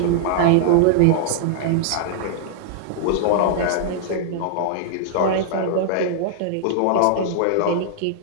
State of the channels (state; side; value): different; both; correlation -0.01